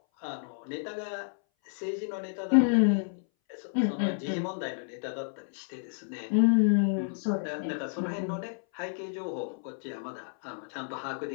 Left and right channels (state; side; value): silent; right; 57 dB below the other